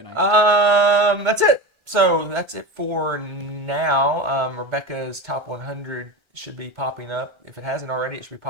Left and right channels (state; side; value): late; left; 1.3 ms